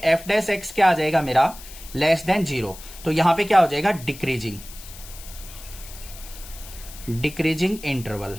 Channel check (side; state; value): left; noise; hiss, 16 dB below the sound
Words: एफ डैश एक्स क्या आ जाएगा मेरा लेस देन 0, तो यहां पे क्या हो जाएगा डिक्रीजिंग इंटरवल।